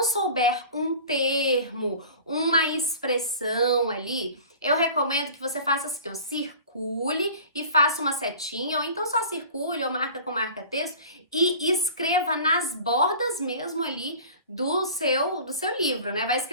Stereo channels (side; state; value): both; inverted; correlation -0.41